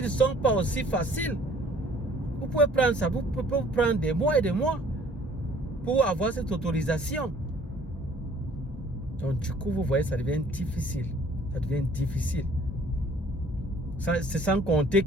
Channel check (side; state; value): both; normal; correlation 0.56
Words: sont pas aussi faciles. Vous pouvez prendre ça, vous pouvez prendre des mois et des mois pour avoir cette autorisation. Donc du coup, vous voyez, ça devient difficile. Ça devient difficile. C'est sans compter